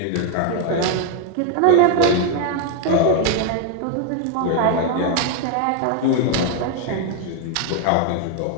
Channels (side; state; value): both; different; correlation 0.00